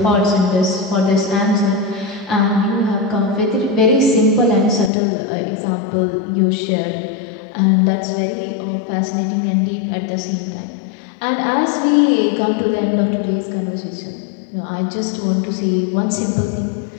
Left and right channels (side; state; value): right; drops out; at 4.9 s